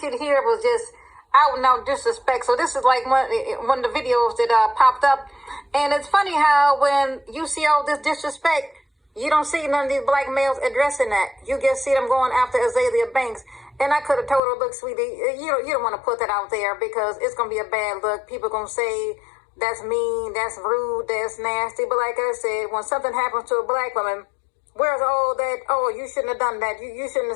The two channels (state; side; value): drops out; right; at 14.4 s